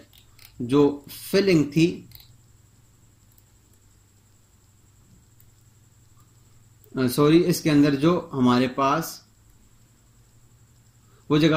जो फिलिंग थी इसके अंदर जो हमारे पास वो जगह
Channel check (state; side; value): identical; both; correlation 1.00